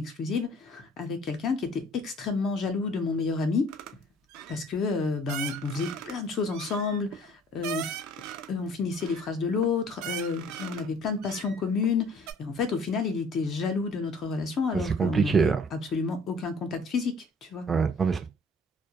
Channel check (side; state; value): both; normal; correlation 0.54